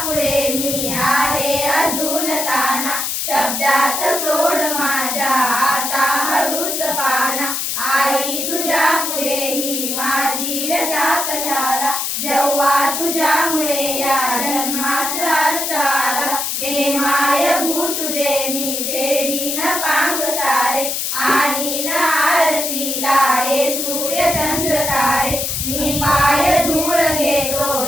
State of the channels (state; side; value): noise; left; hiss, 1 dB below the sound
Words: पुढे मी आहे अजून ताना, शब्दात सोड माझ्या आता हळूच पाना. आई तुझ्या पुढे ही माझी व्यथा कशाला, जेव्हा तुझ्यामुळे या जन्मास अर्थ आला. घे माय भू तुझे मी फेडीन पांग सारे आणि आरतीला हे सूर्य चंद्र तारे. मी पाय धूळ घेतो